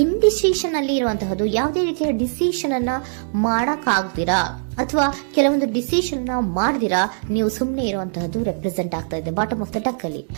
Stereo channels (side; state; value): left; silent; digital silence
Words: ಇಂಡಿಸಿಷನ್ ಅಲ್ಲಿ ಇರುವಂತಹದ್ದು ಯಾವುದೇ ರೀತಿಯ ಡಿಸಿಷನ್ ಅನ್ನ ಮಾಡಕ್ ಆಗ್ದಿರಾ ಅಥವಾ ಕೆಲವೊಂದು ಡಿಸಿಷನ್ ಮಾಡ್ದಿರಾ ನೀವು ಸುಮ್ಮನೆ ಇರುವಂತಹದ್ದು ರೆಪ್ರೆಸೆಂಟ್ ಆಗ್ತಾ ಇದೆ ಬಾಟಮ್ ಆಫ್ ದ ಡಕ್ ಅಲ್ಲಿ.